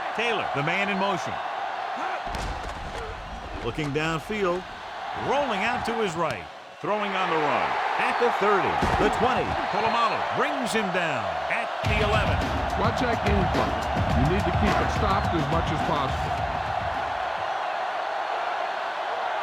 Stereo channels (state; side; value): identical; both; correlation 1.00